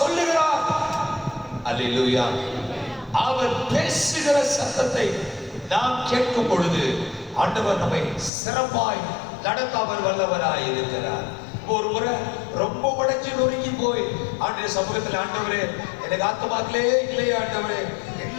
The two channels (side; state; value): right; drops out; at 8.3 s